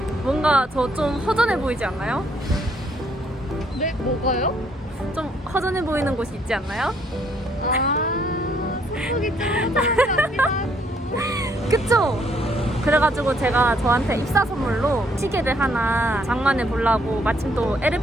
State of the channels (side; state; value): both; normal; correlation 0.68